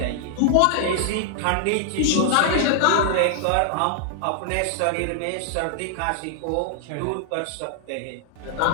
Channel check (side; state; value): both; different; correlation -0.01